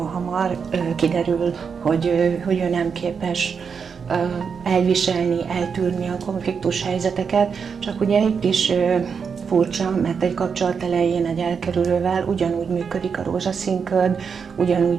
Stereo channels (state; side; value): quieter; left; 6.1 dB